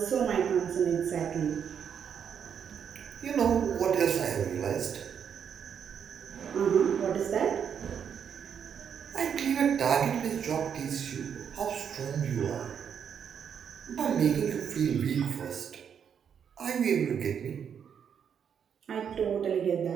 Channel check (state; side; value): quieter; left; 7.8 dB